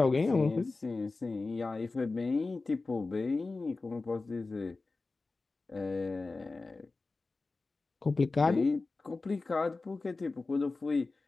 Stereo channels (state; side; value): quieter; right; 3.6 dB